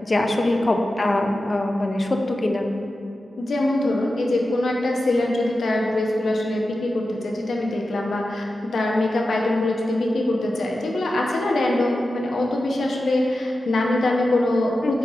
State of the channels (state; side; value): normal; both; correlation 0.92